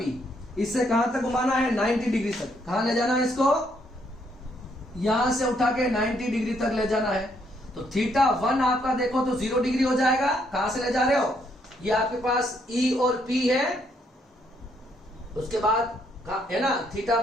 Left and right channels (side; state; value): both; normal; correlation 0.72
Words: इससे कहां तक घुमाना है, 90 डिग्री तक। कहां ले जाना है इसको, यहां से उठा के 90 डिग्री तक ले जाना है। तो θ1 आपका देखो तो 0 डिग्री हो जाएगा। कहां से ले जा रहे हो, ये आपके पास E और P है, उसके बाद है ना θ